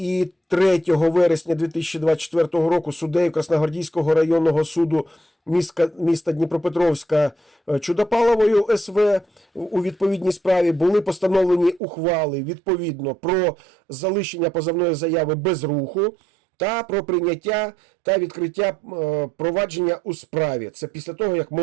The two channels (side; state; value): left; drops out; at 11.8 s